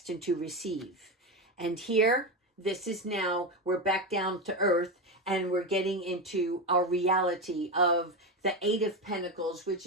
to receive. And here, this is now, we're back down to earth, and we're getting into our reality of the Eight of Pentacles, which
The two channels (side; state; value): both; normal; correlation 0.16